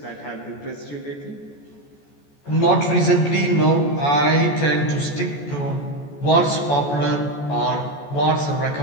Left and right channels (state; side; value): late; right; 14 ms